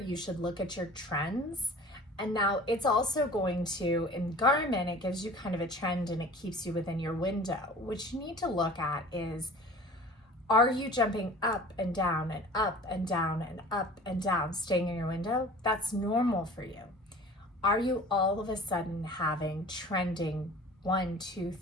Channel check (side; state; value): both; normal; correlation 0.43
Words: should look at your trends. And now it's also going to, in Garmin, it gives you kind of a trend and it keeps you within your window. What you need to look at is, are you jumping up and down and up and down and up and down, staying in your window? That's normal for you. Are you all of a sudden having trending 1, 2,